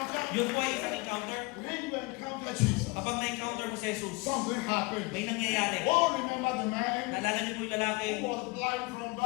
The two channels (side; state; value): right; quieter; 25.8 dB